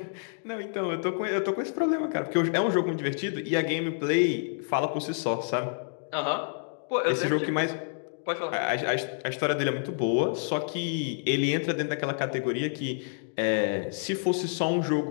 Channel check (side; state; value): right; silent; digital silence